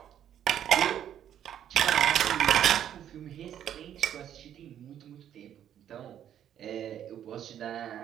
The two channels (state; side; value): quieter; left; 10.2 dB